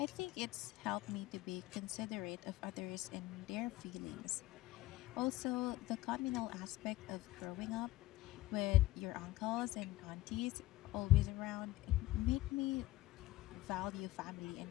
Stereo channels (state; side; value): quieter; right; 17.3 dB